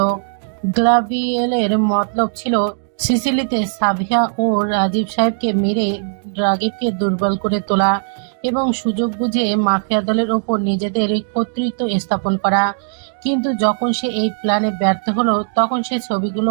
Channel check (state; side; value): silent; left; digital silence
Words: গ্ল্যাভিয়ারের মতলব ছিল সিসিলিতে সাবিহা ও রাজীব সাহেবকে মেরে রাগিবকে দুর্বল করে তোলা এবং সুযোগ বুঝে মাফিয়া দলের ওপর নিজেদের কর্তৃত্ব স্থাপন করা। কিন্তু যখন সে এই প্ল্যানে ব্যর্থ হলো, তখন সে ছবিগুলো